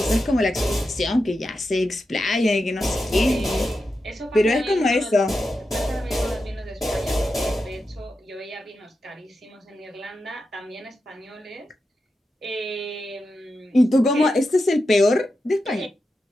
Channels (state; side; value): normal; both; correlation 0.89